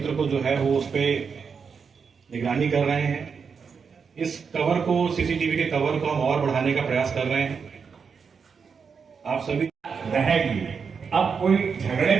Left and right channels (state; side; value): quieter; left; 5.9 dB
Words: को जो है वो उस पे निगरानी कर रहे हैं। इस कवर को, सीसीटीवी के कवर को हम और बढ़ाने का प्रयास कर रहे हैं। आप सभी रहेगी। अब कोई झगड़े